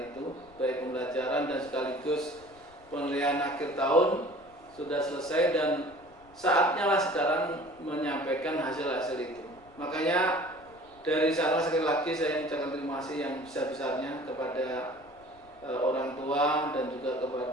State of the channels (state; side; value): noise; left; rumble, 27 dB below the sound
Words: baik pembelajaran dan sekaligus penilaian akhir tahun sudah selesai, dan saatnya lah sekarang menyampaikan hasil-hasil itu. Makanya dari sana sekali lagi saya mengucapkan terima kasih yang besar-besarnya kepada orang tua dan juga